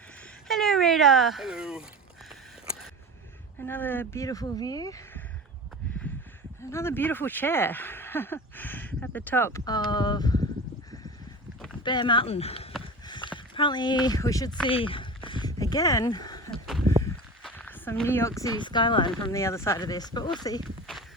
Hello, Rita. Hello. Another beautiful view. Another beautiful chair at the top of Bear Mountain. Apparently we should see again some New York City skyline from the other side of this, but we'll see.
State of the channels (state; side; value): normal; both; correlation 0.32